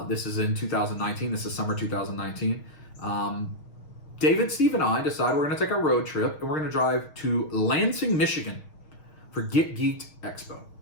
This is in 2019. This is summer 2019. David, Steve, and I decided we're going to take a road trip, and we're going to drive to Lansing, Michigan for Get Geeked Expo,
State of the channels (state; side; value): late; right; 6.4 ms